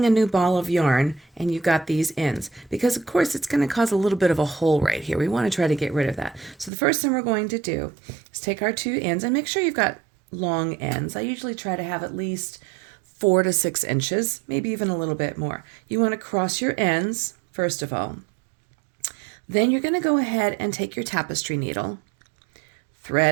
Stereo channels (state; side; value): drops out; left; at 6.7 s